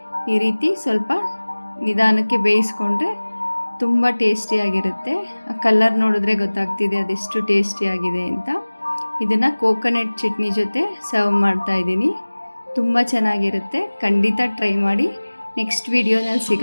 ಈ ರೀತಿ ಸ್ವಲ್ಪ ನಿಧಾನಕ್ಕೆ ಬೇಯಿಸ್ಕೊಂಡ್ರೆ ತುಂಬ ಟೇಸ್ಟಿಯಾಗಿರುತ್ತೆ. ಆ ಕಲರ್ ನೋಡಿದ್ರೆ ಗೊತ್ತಾಗ್ತಿದೆ ಅದೆಷ್ಟು ಟೇಸ್ಟಿಯಾಗಿದೆ ಅಂತ. ಇದನ್ನು ಕೋಕೋನಟ್ ಚಟ್ನಿ ಜೊತೆ ಸರ್ವ್ ಮಾಡ್ತಾಯಿದ್ದೀನಿ. ತುಂಬ ಚೆನ್ನಾಗಿರುತ್ತೆ. ಖಂಡಿತ ಟ್ರೈ ಮಾಡಿ. ನೆಕ್ಸ್ಟ್ ವಿಡಿಯೋನಲ್ಲಿ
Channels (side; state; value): both; inverted; correlation -1.00